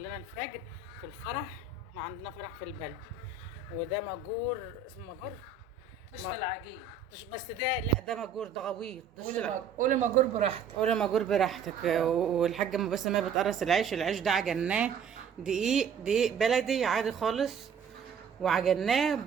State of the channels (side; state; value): left; quieter; 6.3 dB